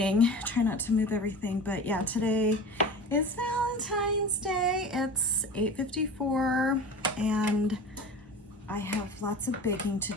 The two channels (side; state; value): both; normal; correlation 0.34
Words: Try not to move everything, but yeah, today is Valentine's Day. It's 8:54 and I have lots of baking to